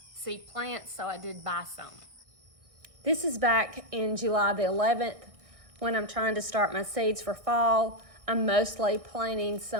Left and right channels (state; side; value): late; left; 1.6 ms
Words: seed plants, so I did buy some. This is back in July the 11th when I'm trying to start my seeds for fall. I'm mostly planting